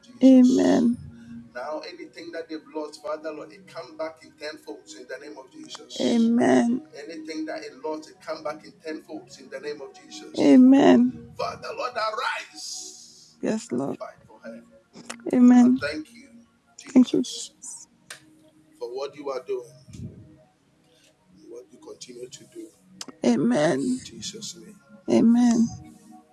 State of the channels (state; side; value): identical; both; correlation 1.00